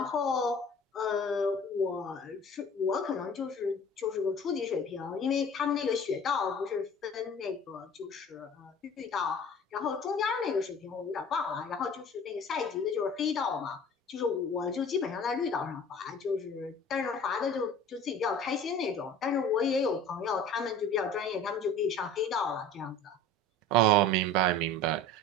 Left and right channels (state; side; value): normal; both; correlation 0.43